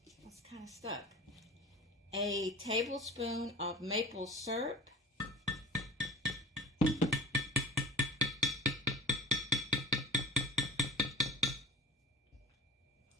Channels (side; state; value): both; normal; correlation 0.36